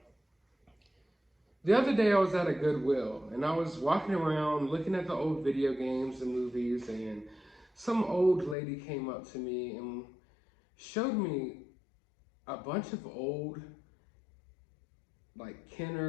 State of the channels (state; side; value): drops out; right; at 8.6 s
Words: the other day I was at a Goodwill, and I was walking around looking at the old video games and movies, and some old lady came up to me and showed me a bunch of old, like,